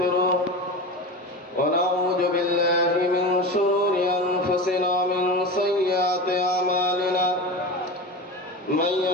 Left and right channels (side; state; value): both; normal; correlation 0.28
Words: ونعوذ بالله من شرور أنفسنا ومن سيئات أعمالنا. من